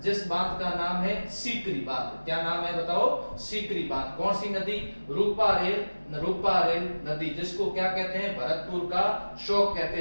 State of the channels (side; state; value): both; inverted; correlation -1.00